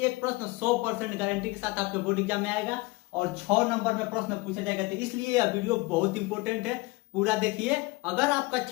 प्रश्न 100% गारंटी के साथ आपके बोर्ड एग्जाम में आएगा और 6 नंबर में प्रश्न पूछा जाएगा। तो इसलिए यह वीडियो बहुत इंपॉर्टेंट है, पूरा देखिए। अगर आप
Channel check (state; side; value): quieter; right; 23.5 dB